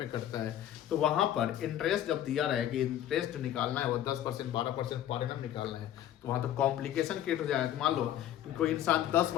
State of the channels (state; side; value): quieter; right; 11.5 dB